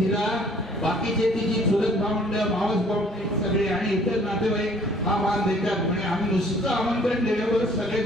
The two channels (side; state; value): both; normal; correlation 0.56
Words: बाकीचे तिची चुलत भावंड मावस भावंड सगळे आणि इतर नातेवाईक हा मान देतात. म्हणजे आम्ही नुसतं आमंत्रण दिल्यावर सगळे